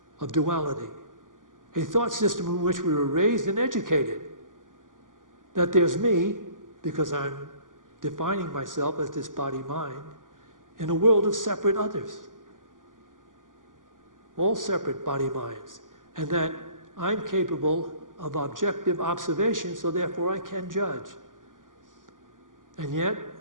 of duality, a thought system in which we were raised and educated, that there's me, because I'm defining myself as this body-mind, in a world of separate others, all separate body-minds, and that I'm capable of objective observation, so therefore I can judge. And yet,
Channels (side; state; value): left; late; 0.89 ms